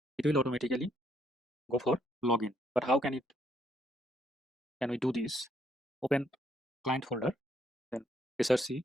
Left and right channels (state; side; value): normal; both; correlation 0.70